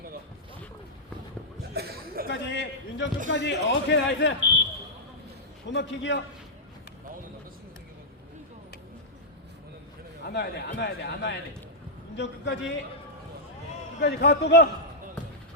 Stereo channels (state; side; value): normal; both; correlation -0.09